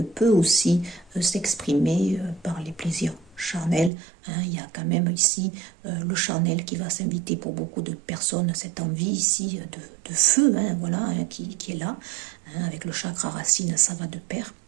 peut aussi s'exprimer par les plaisirs charnels, hein, il y a quand même ici le charnel qui va s'inviter pour beaucoup de personnes, cette envie ici de feu, hein, voilà, hein, qui est là, hein, avec le chakra racine, ça va de pair,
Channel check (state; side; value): drops out; left; at 3.9 s